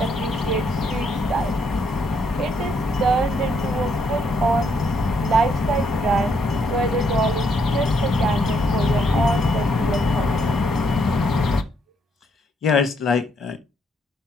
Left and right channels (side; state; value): both; normal; correlation 0.73